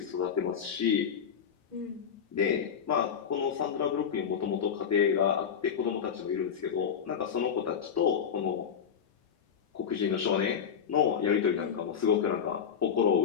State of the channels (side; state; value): right; quieter; 7.5 dB